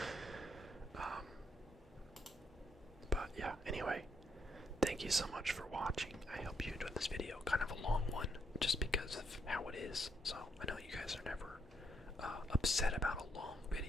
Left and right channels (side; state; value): both; normal; correlation 0.76